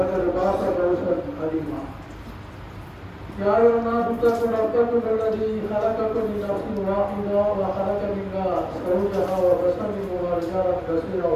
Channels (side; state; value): both; identical; correlation 1.00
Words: فاز فوزا عظيما. يا أيها الناس اتقوا ربكم الذي خلقكم من نفس واحدة وخلق منها زوجها وبث منهما رجالا كثيرا